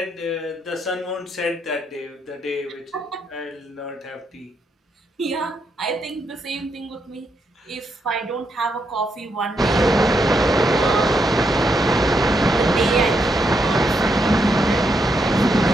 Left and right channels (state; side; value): normal; both; correlation 0.80